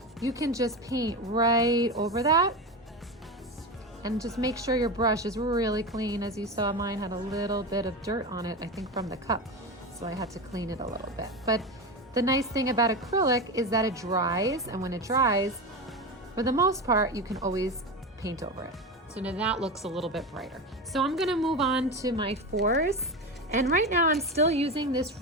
you can just paint right over that and just make sure your brush is really clean. As you saw, mine had a little bit of dirt on it, I think from the cup. So I had to clean it a little bit. But the nice thing about acrylic is that it dries, and when it dries, for the most part, you can always paint over it. So now that looks a little bit brighter. So I'm gonna move on to my 4s. And right now I'm still using this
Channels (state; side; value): normal; both; correlation 0.21